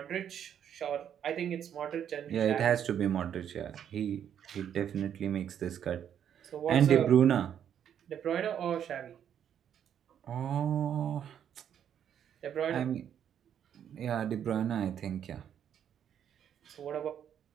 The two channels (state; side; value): quieter; left; 9.2 dB